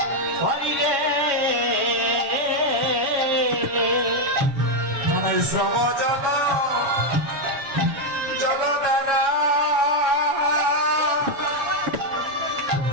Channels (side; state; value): left; late; 7.3 ms